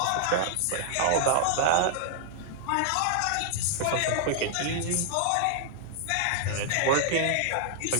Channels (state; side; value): different; both; correlation -0.01